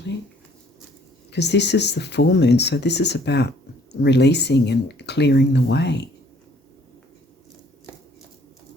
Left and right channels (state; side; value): normal; both; correlation 0.60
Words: because this is the full moon, so this is about releasing and clearing the way.